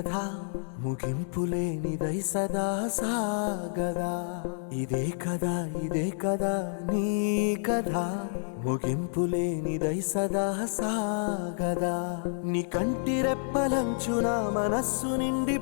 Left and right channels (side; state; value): right; silent; digital silence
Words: ముగింపులేనిదై సదా సాగదా. ఇదే కదా నీ కథ ముగింపులేనిదై సదా సాగదా. నీ కంటి రెప్పలంచున మనస్సు నిండి